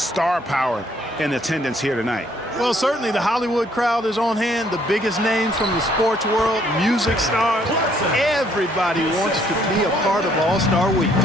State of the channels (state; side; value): normal; both; correlation 0.66